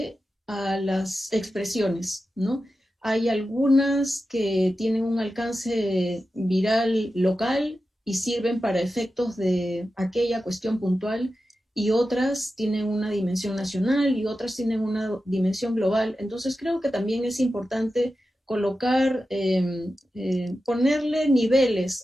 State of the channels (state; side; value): normal; both; correlation 0.92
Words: a las expresiones, ¿no? Hay algunas que tienen un alcance viral local y sirven para efectos de aquella cuestión puntual y otras tienen una dimensión nacional y otras tienen una dimensión global. Entonces creo que también es importante colocar, ponerle